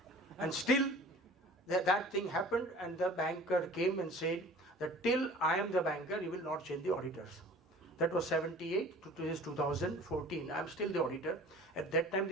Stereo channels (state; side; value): normal; both; correlation 0.45